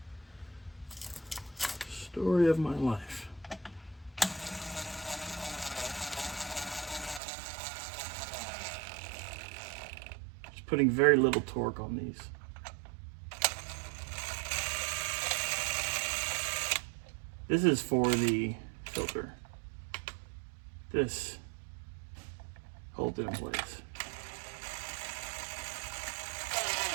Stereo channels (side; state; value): left; drops out; at 7.2 s